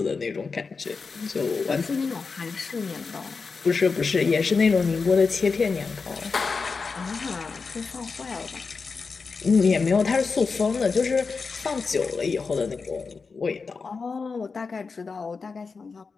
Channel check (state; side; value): quieter; right; 4.7 dB